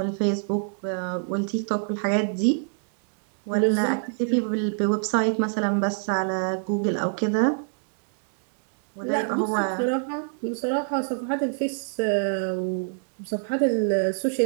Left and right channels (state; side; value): silent; left; digital silence